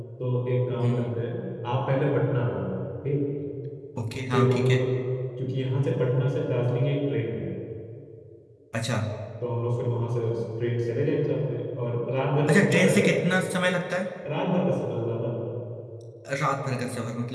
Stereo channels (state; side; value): identical; both; correlation 1.00